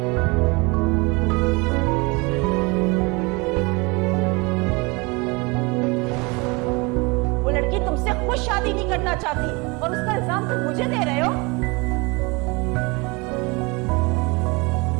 वो लड़की तुमसे खुद शादी नहीं करना चाहती और उसका इल्जाम तुम मुझे दे रहे हो।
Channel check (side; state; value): left; quieter; 27.1 dB